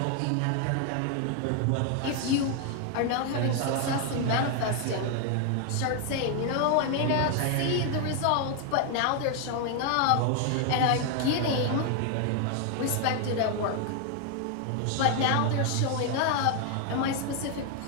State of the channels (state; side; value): different; both; correlation 0.00